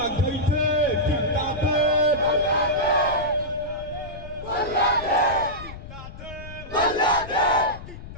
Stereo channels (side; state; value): left; noise; rumble, 13 dB below the sound